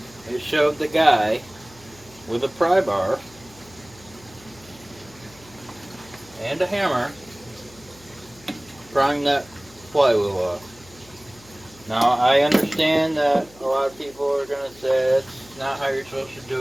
It showed the guy with a pry bar and a hammer prying that flywheel off. Now, I understand that a lot of people are going to say it's not how you're supposed to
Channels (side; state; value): left; noise; hum, 24 dB below the sound